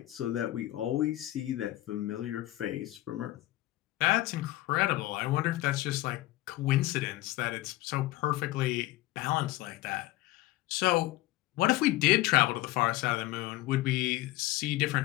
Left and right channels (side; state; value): right; quieter; 17.1 dB